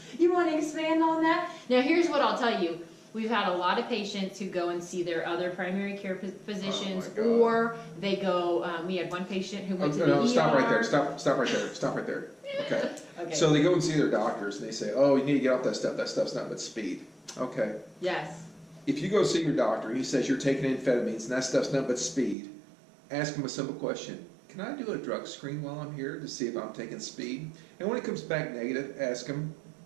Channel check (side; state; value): left; drops out; at 22.4 s